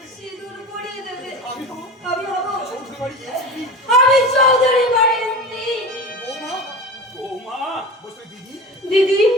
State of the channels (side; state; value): both; normal; correlation 0.30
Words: সিঁদুর পরিয়ে দেবে। আমি হব আমি হব চৌধুরী বাড়ির স্ত্রী। আমি চৌধুরী বাড়ির স্ত্রী। বৌমা, বৌমা, বসে দিদি, দিদি,